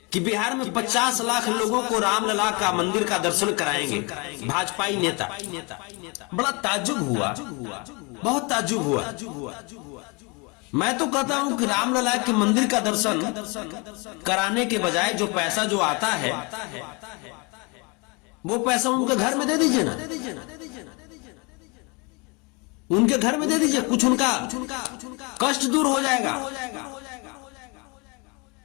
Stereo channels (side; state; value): right; quieter; 29.5 dB